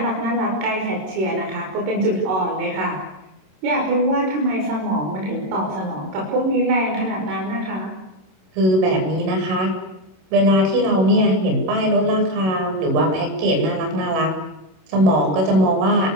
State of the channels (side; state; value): left; late; 27 ms